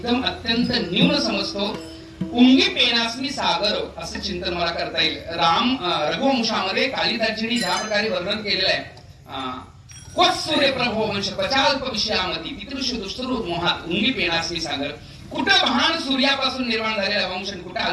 अत्यंत न्यून समजतो. उंगी पेनासनी सागर असं चिंतन मला करता येईल. रघुवंशामध्ये कालिदासजींनी ज्या प्रकारे वर्णन केलेलं आहे, सूर्य प्रभो वंश पचाल्प विषयामती पितृष दुष्टरूप मोहात उंगी पेनासनी सागर. कुठं महान सूर्यापासून निर्माण झालेला वंश, कुठं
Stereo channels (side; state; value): both; identical; correlation 1.00